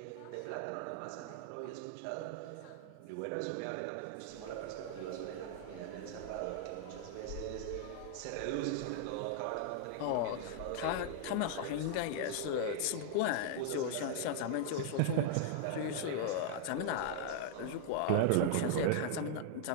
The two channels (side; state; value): both; different; correlation -0.01